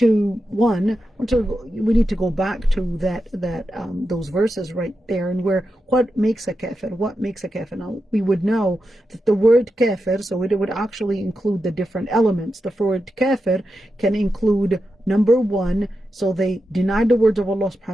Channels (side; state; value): both; normal; correlation 0.89